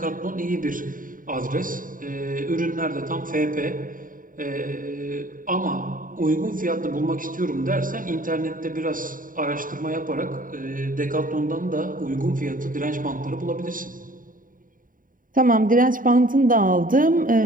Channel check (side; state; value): left; late; 0.39 ms